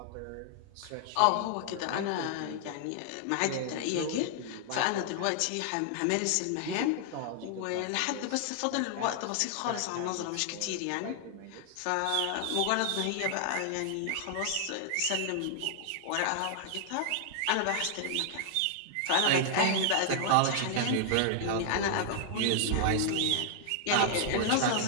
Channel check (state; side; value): different; both; correlation 0.00